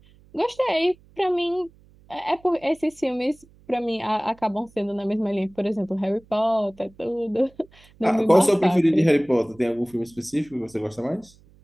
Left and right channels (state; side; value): noise; right; hum, 28 dB below the sound